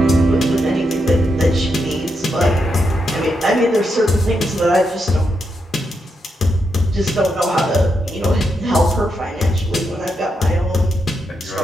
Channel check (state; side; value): normal; both; correlation 0.82